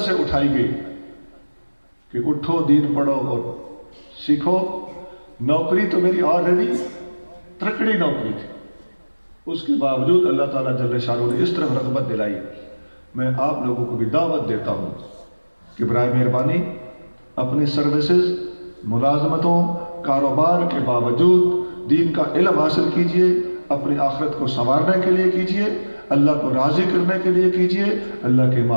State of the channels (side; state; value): both; inverted; correlation -1.00